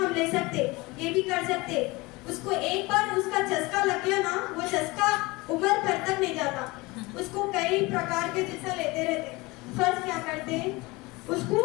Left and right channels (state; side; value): quieter; right; 23.2 dB